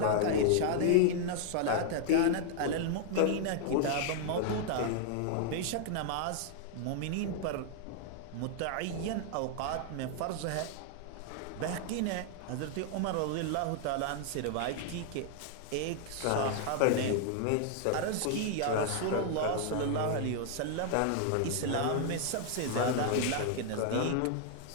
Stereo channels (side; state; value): both; different; correlation 0.00